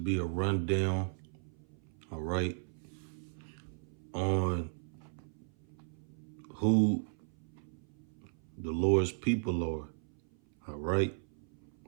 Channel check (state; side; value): silent; left; 54 dB below the other